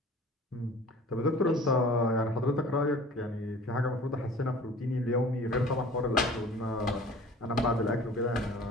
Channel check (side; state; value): both; normal; correlation 0.45